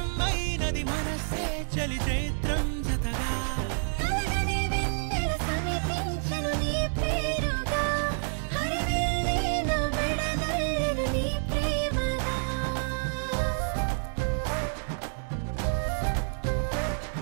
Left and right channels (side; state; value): left; silent; digital silence